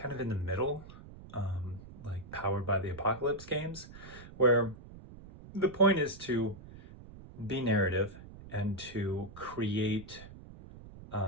of in the middle, like Powered by the Apocalypse games, where the point is to be narrative and to create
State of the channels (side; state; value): right; noise; rumble, 16 dB below the sound